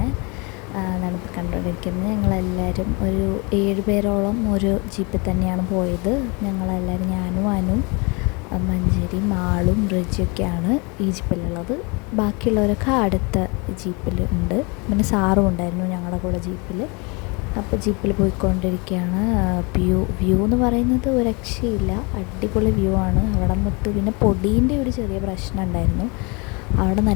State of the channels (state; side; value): quieter; right; 29.5 dB